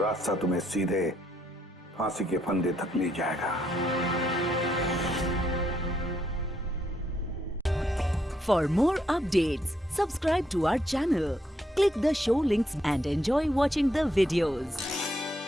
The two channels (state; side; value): normal; both; correlation 0.75